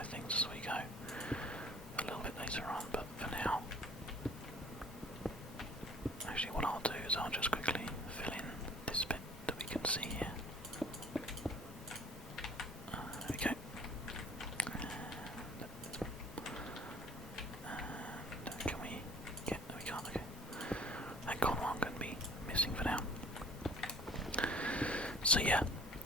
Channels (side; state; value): both; normal; correlation 0.50